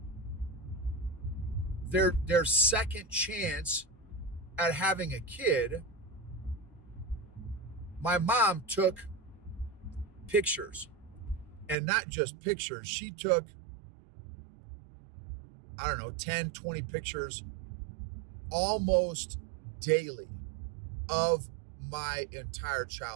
their second chance at having a kid. My mom took pictures, and not just pictures. She took, 10, 20 pictures almost daily of my entire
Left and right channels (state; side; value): drops out; left; at 11.8 s